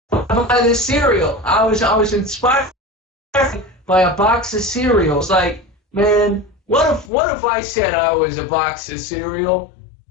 by the cereal. I was inspired by a box of cereal. It's like, man, what if I said I was a box of cereal,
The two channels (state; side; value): drops out; right; at 7.1 s